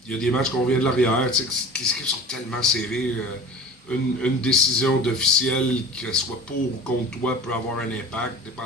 Il y a des matchs qu'on vient de l'arrière. Les équipes sont tellement serrées. Une décision d'officiel, qu'elle soit pour ou contre toi, peut avoir un impact,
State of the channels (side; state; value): both; normal; correlation 0.38